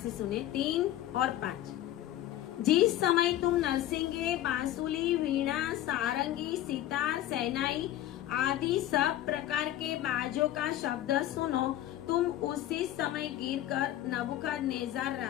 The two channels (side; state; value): right; quieter; 13.2 dB